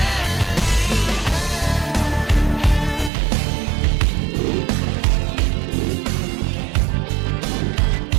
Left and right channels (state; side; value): drops out; left; at 3.1 s